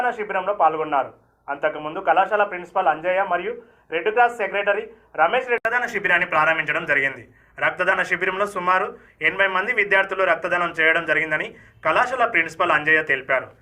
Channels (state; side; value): identical; both; correlation 1.00